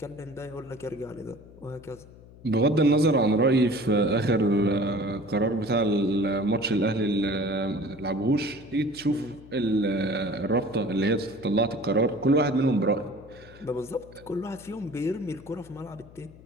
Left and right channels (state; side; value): noise; left; hum, 21 dB below the sound